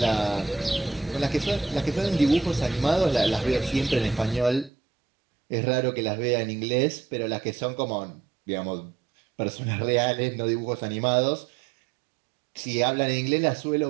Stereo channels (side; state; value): left; drops out; at 4.7 s